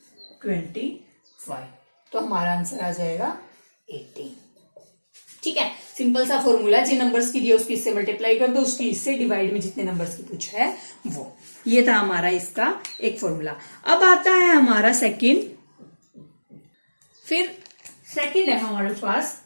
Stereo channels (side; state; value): both; inverted; correlation -1.00